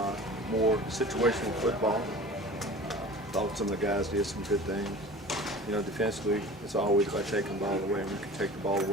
more situational football. Thought some of the guys did some good things. Defensively, it's always about taking the ball away, and we can take the ball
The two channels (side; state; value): both; normal; correlation 0.40